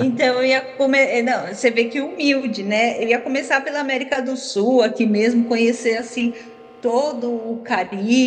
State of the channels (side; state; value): both; identical; correlation 1.00